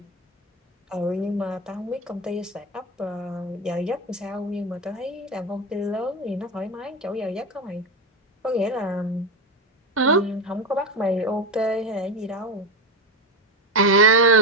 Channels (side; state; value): both; normal; correlation 0.15